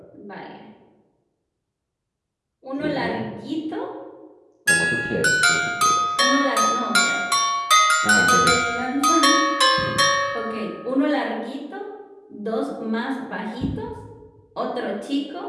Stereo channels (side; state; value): both; identical; correlation 1.00